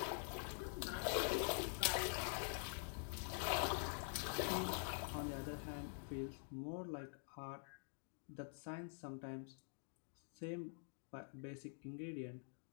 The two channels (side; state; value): right; silent; digital silence